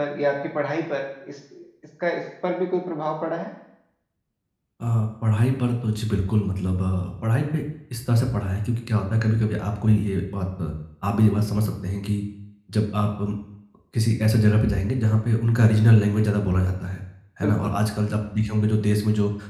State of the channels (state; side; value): identical; both; correlation 1.00